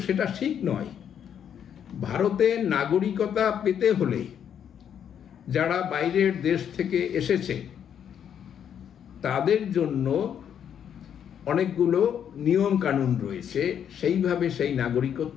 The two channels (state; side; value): quieter; right; 8.8 dB